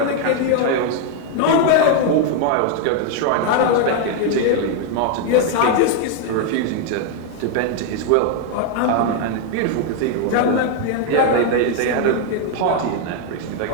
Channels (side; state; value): both; different; correlation 0.01